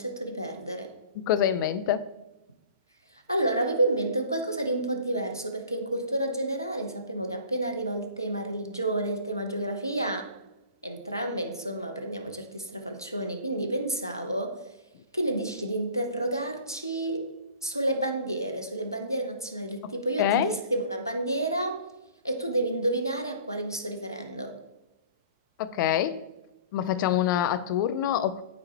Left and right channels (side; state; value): both; inverted; correlation -0.44